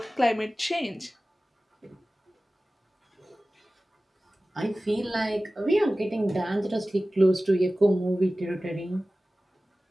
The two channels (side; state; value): both; normal; correlation 0.97